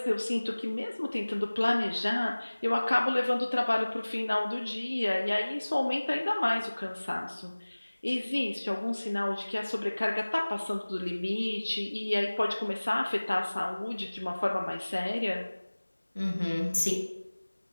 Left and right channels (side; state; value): both; inverted; correlation -1.00